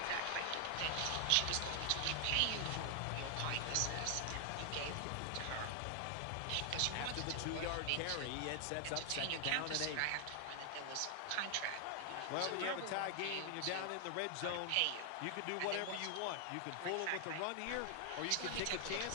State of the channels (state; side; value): different; both; correlation 0.00